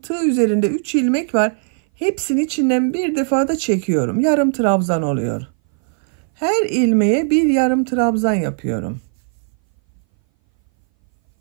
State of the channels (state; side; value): silent; left; 61 dB below the other